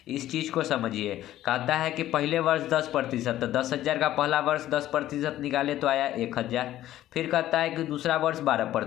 इस चीज़ को समझिए। कहता है कि पहले वर्ष 10%, तो 10,000 का पहला वर्ष 10% निकाले तो आया 1000। फिर कहता है कि दूसरा वर्ष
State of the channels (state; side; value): quieter; right; 13.6 dB